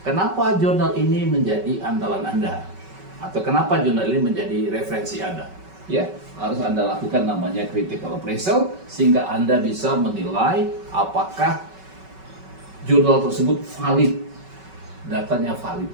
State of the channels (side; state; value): left; late; 5.3 ms